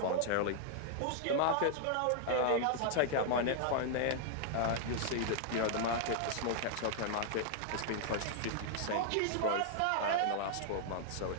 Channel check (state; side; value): different; both; correlation -0.01